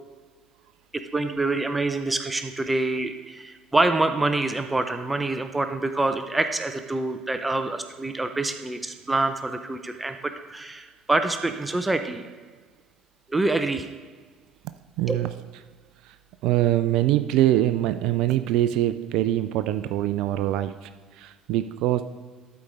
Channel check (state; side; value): quieter; left; 5.5 dB